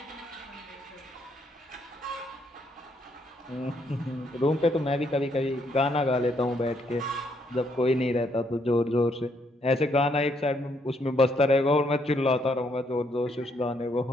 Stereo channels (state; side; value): normal; both; correlation 0.72